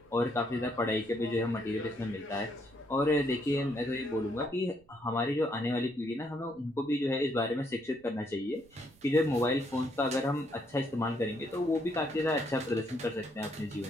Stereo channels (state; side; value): noise; right; rumble, 29 dB below the sound